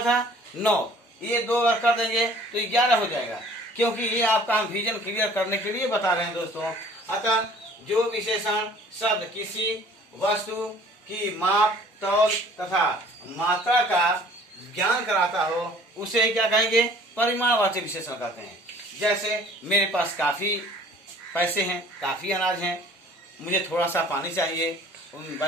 था 9, ये 2 अगर कर देंगे तो 11 हो जाएगा, क्योंकि ये आपका हम विजन क्लियर करने के लिए बता रहे हैं दोस्तों। अतः जो विशेषण शब्द किसी वस्तु की माप तौल तथा मात्रा का ज्ञान कराता हो उसे क्या कहेंगे? परिमाणवाचक विशेषण कहते हैं। जैसे मेरे पास काफी पैसे हैं, काफी अनाज है, मुझे थोड़ा सा पानी चाहिए,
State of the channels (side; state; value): both; normal; correlation 0.52